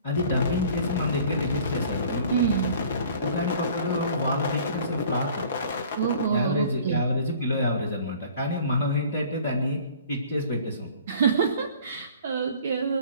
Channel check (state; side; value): inverted; both; correlation -0.50